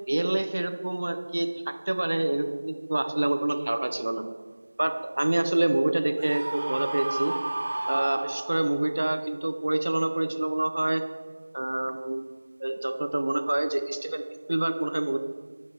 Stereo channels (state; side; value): inverted; both; correlation -1.00